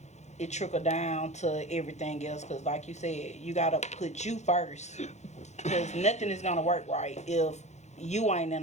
it trickle down to everything else because like you said, you got to put you first because nothing is going to work right if you ain't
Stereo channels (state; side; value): late; right; 0.33 ms